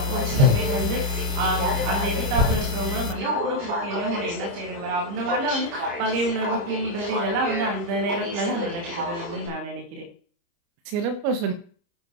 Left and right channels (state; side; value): late; left; 29 ms